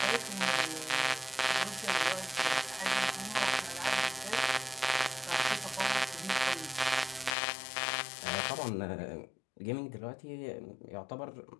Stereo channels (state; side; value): drops out; right; at 7.4 s